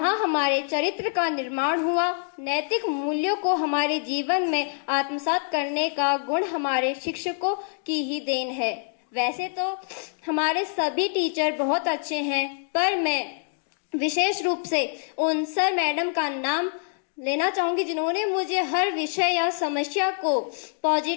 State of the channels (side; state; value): right; silent; 61 dB below the other